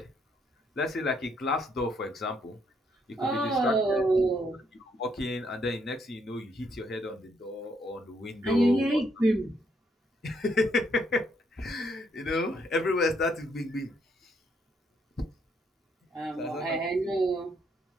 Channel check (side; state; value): both; normal; correlation 0.72